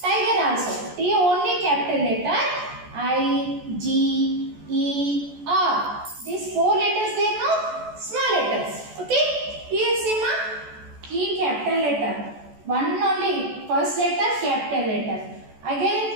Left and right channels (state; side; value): late; left; 14 ms